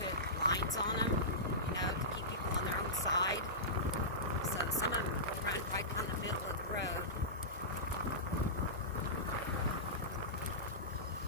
lines on them, to keep people on their own side. So some of them will run right down the middle of the road.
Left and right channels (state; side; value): normal; both; correlation -0.18